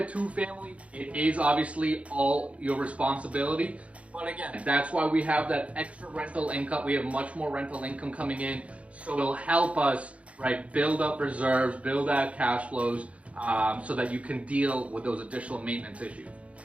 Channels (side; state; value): left; late; 0.063 ms